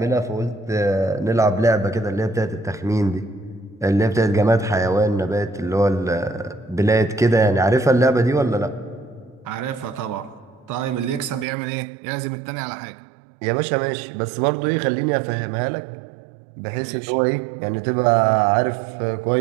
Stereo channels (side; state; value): left; drops out; at 11.5 s